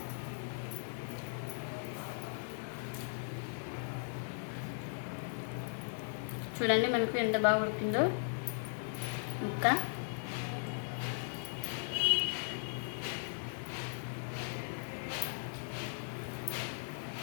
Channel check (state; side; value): silent; right; digital silence